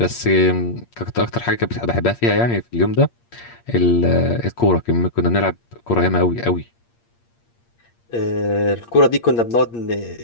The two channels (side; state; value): right; late; 8.6 ms